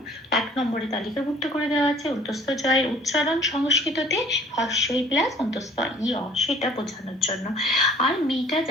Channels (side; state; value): both; normal; correlation 0.53